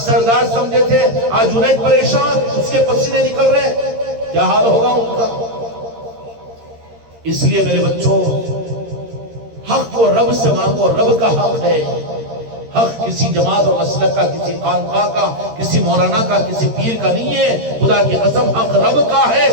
سردار سمجھے تھے، آج جنید پریشان، اس کے پسینے نکل رہے، کیا حال ہوگا ان کا؟ اس لیے میرے بچوں، حق کو رب سے مانگو، رب کا حق ہے۔ حق کسی جماعت اور مسلک کا، کسی خانقاہ کا، کسی مولانا کا، کسی پیر کا نہیں ہے، خدا کی قسم حق رب کا ہے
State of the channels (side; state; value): left; late; 13 ms